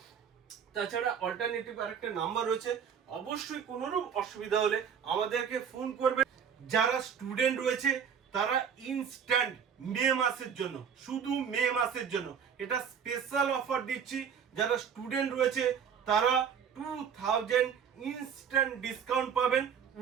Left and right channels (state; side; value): quieter; left; 7.5 dB